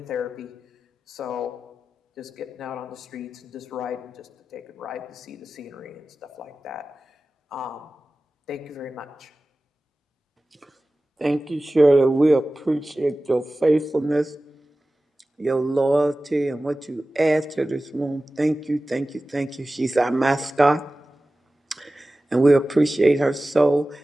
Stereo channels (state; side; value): normal; both; correlation 0.96